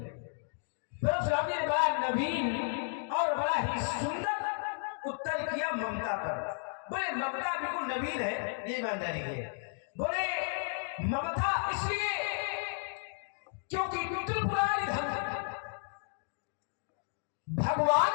परशुराम जी ने बड़ा नवीन और बड़ा ही सुंदर उत्तर किया ममता पर। बोले ममता बिल्कुल नवीन है, ये ईमानदारी है। बोले ममता इसलिए क्योंकि त्रिपुरारी धनु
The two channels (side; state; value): right; silent; 55 dB below the other